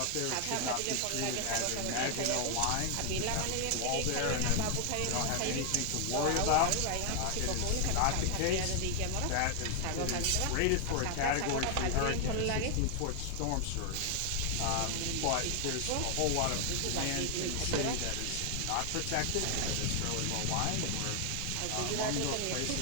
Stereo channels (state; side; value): different; both; correlation 0.00